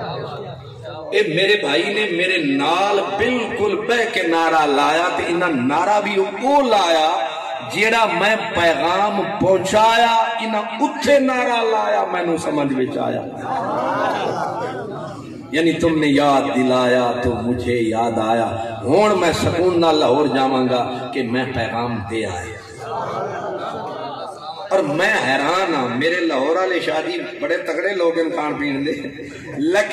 اے میرے بھائی نے میرے نال بالکل بہ کے نعرہ لایا تے انہاں نعرہ بھی وہ لایا جیڑا میں پیغام پہنچایا انہاں اتھے نعرہ لایا میں نو سمجھ وچ آیا یعنی تم نے یاد دلایا تو مجھے یاد آیا ہون میں سکون نہ لاہور جاواں گا کہ میں پیغام دے آیا اور میں حیران ہاں میرے لاہور والے شادی بڑے تگڑے لوگ ان کھان پین دے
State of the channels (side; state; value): both; identical; correlation 1.00